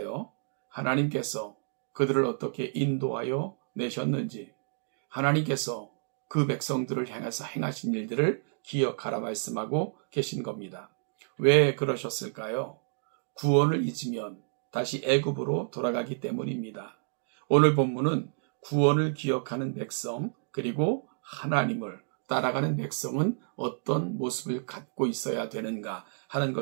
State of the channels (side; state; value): left; silent; digital silence